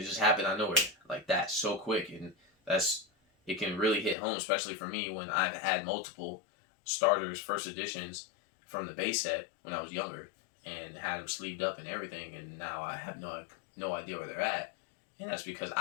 just happened out of nowhere like that, so quick, and it can really hit home, especially for me when I've had multiple starters, first editions from the base set when I was younger, and had them sleeved up and everything, and now I have no idea where they're at, and that's because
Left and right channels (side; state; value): right; drops out; at 4.2 s